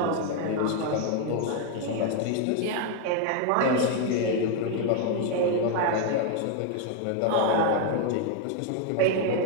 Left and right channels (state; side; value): different; both; correlation 0.00